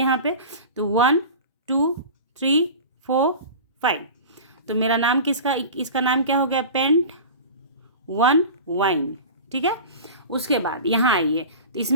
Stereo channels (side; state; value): both; inverted; correlation -0.34